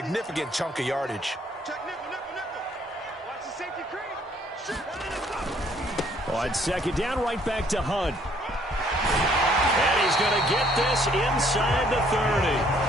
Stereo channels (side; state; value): both; normal; correlation 0.63